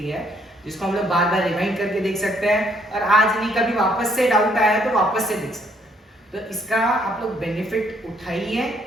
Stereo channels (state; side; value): normal; both; correlation 0.68